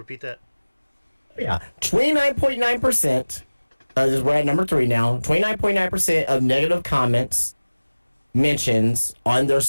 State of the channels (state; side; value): inverted; both; correlation -1.00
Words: that? Yeah, 29.9%. We're at number 3 now. 29.9% of negative comments, mentions on their